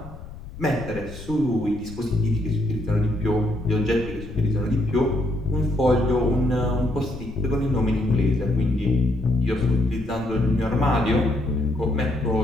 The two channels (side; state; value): left; noise; rumble, 14 dB below the sound